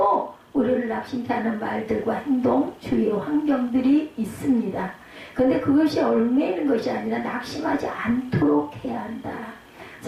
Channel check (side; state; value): both; identical; correlation 1.00